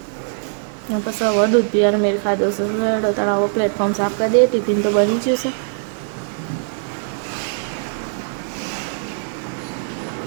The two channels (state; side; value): silent; left; digital silence